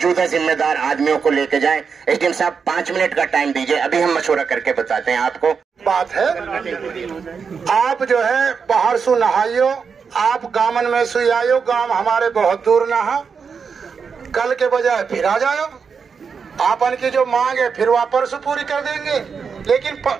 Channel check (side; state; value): left; quieter; 5.9 dB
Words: जिम्मेदार आदमियों को लेके जाएं। एसडीएम साहब 5 मिनट का टाइम दीजिए, अभी हम मशवरा करके बताते हैं आपको। बात है, आप जो है बाहर सु नहाइयो, आप गामन में सु आयो, गांव हमारे बहुत दूर ना हो, कल के बजाय फिर आ जाओ। आपन की जो मांग है फिर वापस पूरी कर देंगे, लेकिन